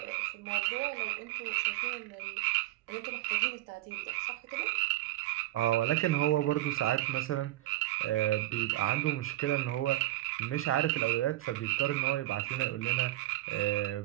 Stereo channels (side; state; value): left; quieter; 16.1 dB